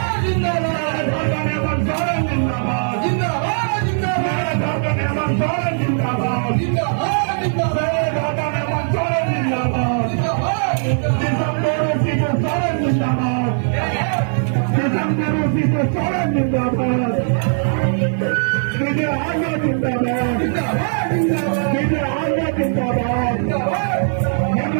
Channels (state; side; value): silent; left; 64 dB below the other